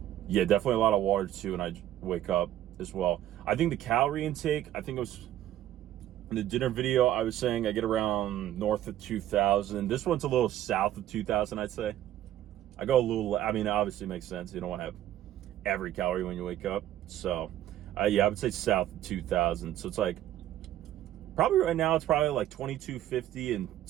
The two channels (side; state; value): left; quieter; 12.7 dB